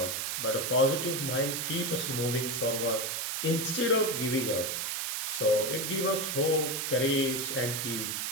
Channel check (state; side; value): noise; right; hiss, 1 dB below the sound